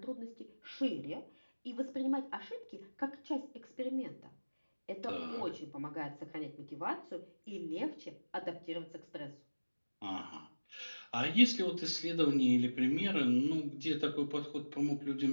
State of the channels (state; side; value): inverted; both; correlation -1.00